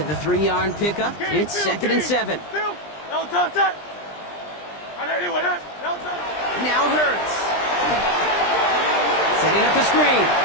the 3-yard pickup, it's 2nd and 7. Now Hurts. Setting up the screen.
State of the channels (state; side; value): late; right; 20 ms